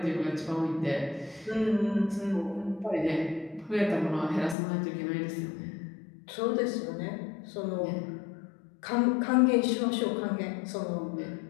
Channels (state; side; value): drops out; right; at 4.5 s